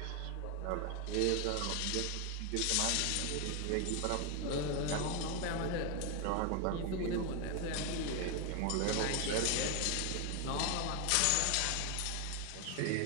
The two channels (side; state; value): both; different; correlation 0.01